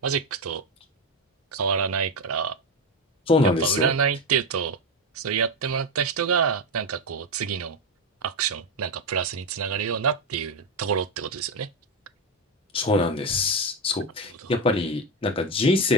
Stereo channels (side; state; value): both; normal; correlation 0.11